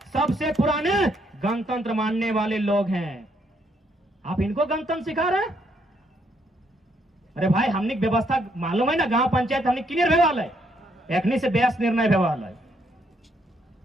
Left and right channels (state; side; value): normal; both; correlation 0.73